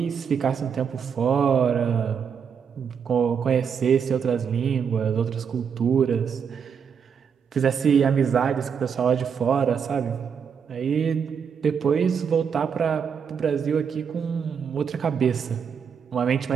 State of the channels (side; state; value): left; quieter; 6.9 dB